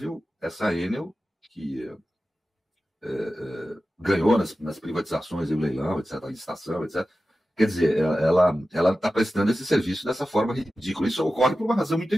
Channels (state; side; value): normal; both; correlation 0.94